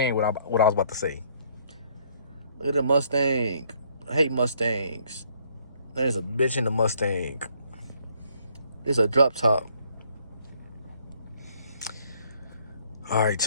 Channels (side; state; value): both; inverted; correlation -0.66